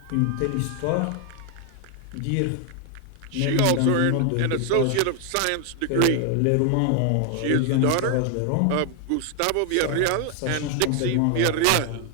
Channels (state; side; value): different; both; correlation 0.00